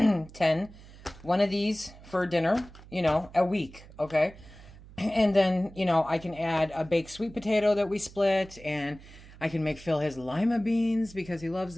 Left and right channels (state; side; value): noise; right; hum, 20 dB below the sound